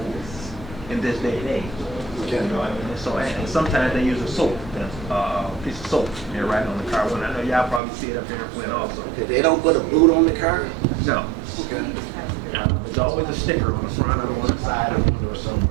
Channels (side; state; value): left; drops out; at 7.8 s